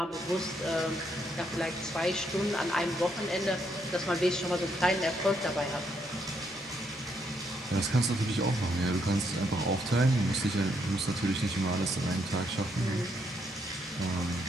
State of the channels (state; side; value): normal; both; correlation 0.75